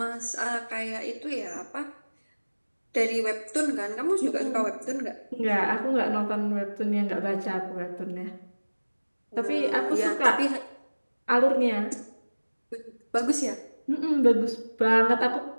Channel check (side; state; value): both; inverted; correlation -1.00